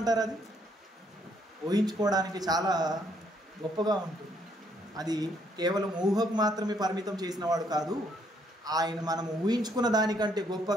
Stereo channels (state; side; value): normal; both; correlation 0.70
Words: అది ఊహించుకోవడానికి చాలా గొప్పగా ఉంటుంది. అది కేవలం ఊహకు మాత్రమే పరిమితం చేసిన వాడు కాదు, ఆయన మనం ఊహించుకున్న దానికంటే